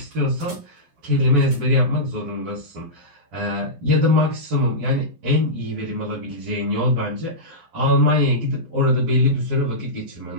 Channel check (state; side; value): late; left; 11 ms